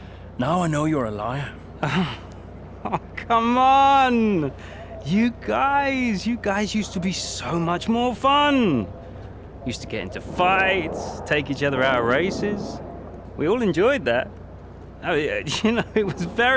Now I know you're a liar. Oh, come on! You guys used to be so much more fun. Used to get into fights, take each other out of races. We all enjoyed that. I mean, you know, it was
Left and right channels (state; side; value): identical; both; correlation 1.00